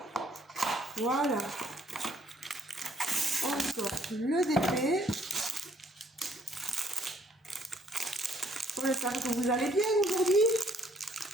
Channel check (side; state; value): both; normal; correlation 0.65